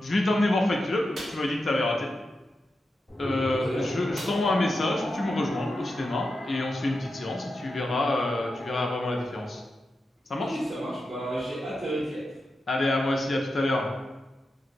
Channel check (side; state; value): both; normal; correlation 0.89